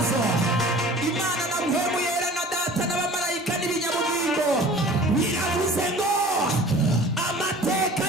Imana na mpemu yera na data n'abamarayika n'ibinyabugingo biravuze ngo amateka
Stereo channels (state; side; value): normal; both; correlation 0.44